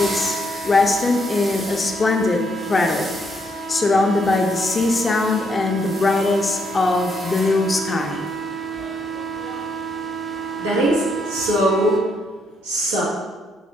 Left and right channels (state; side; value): normal; both; correlation 0.74